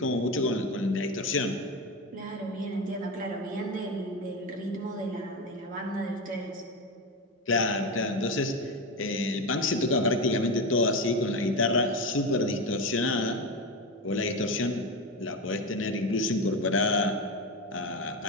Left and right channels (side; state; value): both; normal; correlation 0.18